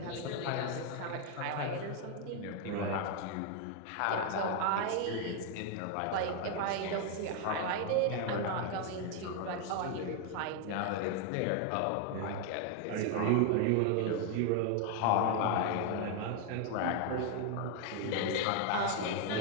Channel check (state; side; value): different; both; correlation 0.01